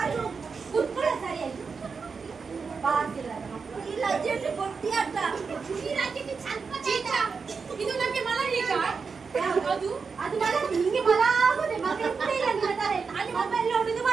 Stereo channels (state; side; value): quieter; left; 5.2 dB